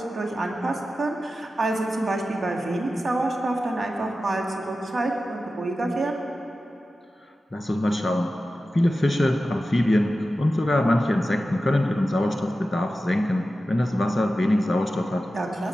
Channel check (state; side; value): normal; both; correlation 0.93